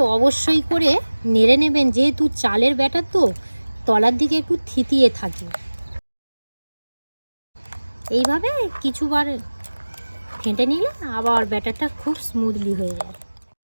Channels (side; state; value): both; inverted; correlation -1.00